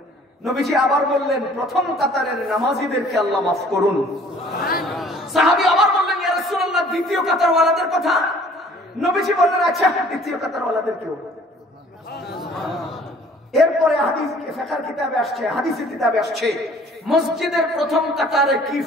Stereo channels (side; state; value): both; normal; correlation 0.54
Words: নবীজি আবার বললেন প্রথম কাতারের নামাজীদেরকে আল্লাহ মাফ করুন। সাহাবী আবার বললেন ইয়া রাসূলুল্লাহ দ্বিতীয় কাতারওয়ালাদের কথা। নবীজি বললেন আচ্ছা দ্বিতীয় কাতারওয়ালাদেরকেও। এরপরে হাদিসের কিতাবে আসছে মসজিদের প্রথম কাতারে কি